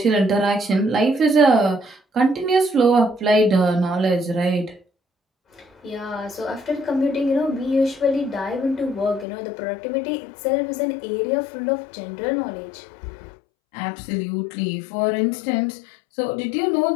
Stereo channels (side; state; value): right; drops out; at 9.2 s